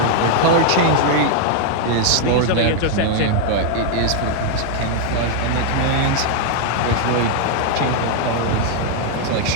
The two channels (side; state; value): both; different; correlation 0.00